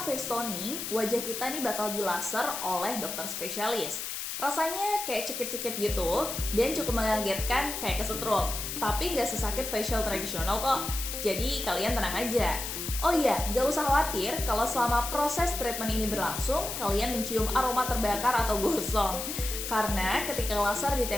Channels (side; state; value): left; noise; hiss, 5 dB below the sound